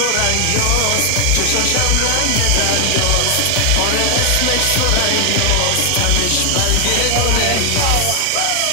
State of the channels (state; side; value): different; both; correlation 0.00